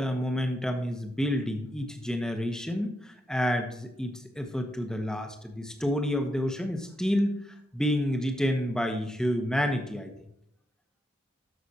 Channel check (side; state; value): both; normal; correlation 0.83